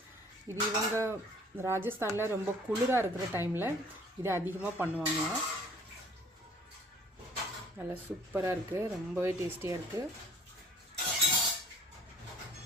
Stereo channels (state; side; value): normal; both; correlation 0.55